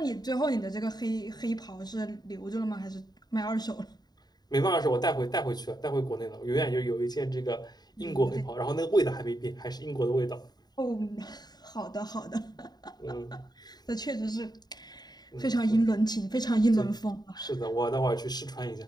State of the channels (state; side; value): late; right; 0.20 ms